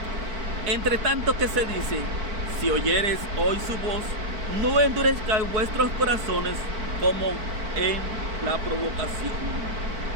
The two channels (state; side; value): late; left; 4.7 ms